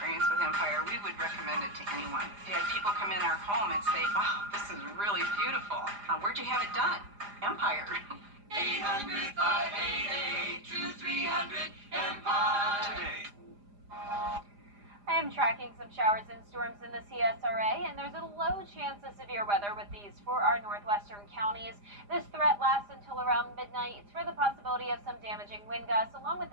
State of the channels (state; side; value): late; left; 4.9 ms